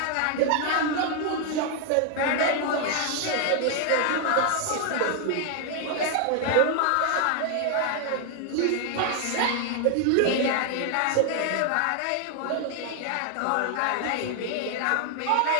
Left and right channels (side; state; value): both; different; correlation 0.00